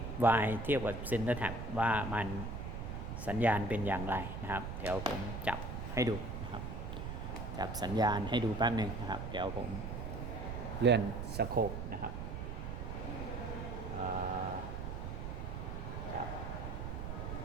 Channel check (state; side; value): noise; right; rumble, 5 dB below the sound